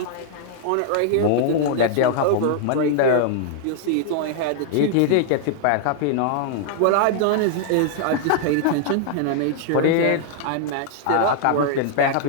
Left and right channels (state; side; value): different; both; correlation -0.01